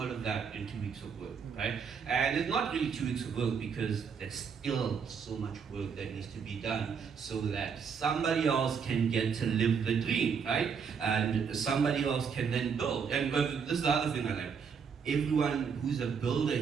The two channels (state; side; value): quieter; left; 6.4 dB